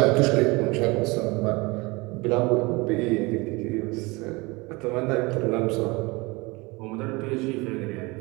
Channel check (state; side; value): quieter; left; 24.7 dB